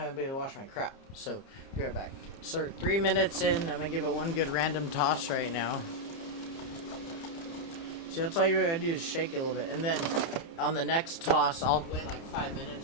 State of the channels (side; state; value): right; late; 30 ms